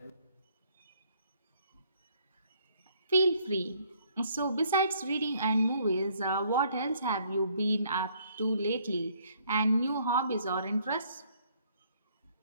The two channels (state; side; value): inverted; both; correlation -0.65